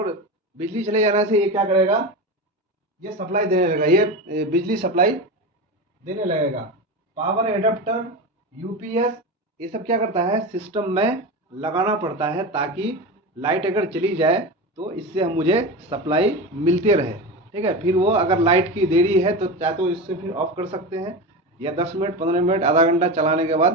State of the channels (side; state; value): both; normal; correlation 0.23